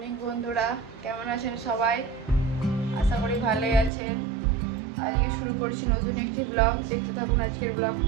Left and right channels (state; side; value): drops out; left; at 3.9 s